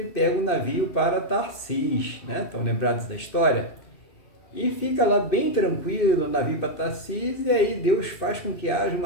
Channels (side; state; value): right; late; 2.6 ms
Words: pega o navio para Tarsis, né? Estão lembrados da história? E fica lá bem tranquilo no navio para Tarsis, e aí Deus faz com que haja